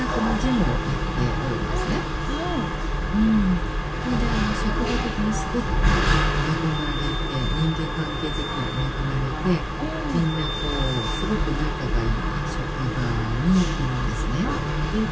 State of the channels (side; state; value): both; identical; correlation 1.00